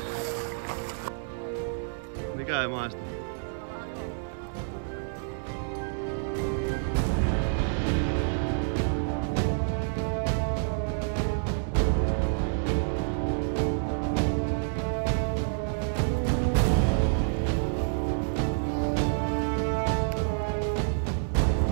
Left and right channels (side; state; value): left; silent; digital silence